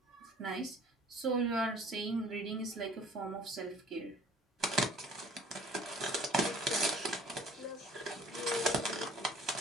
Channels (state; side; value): normal; both; correlation 0.52